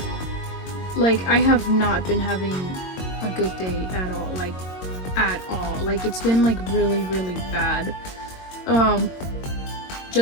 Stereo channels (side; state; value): right; late; 22 ms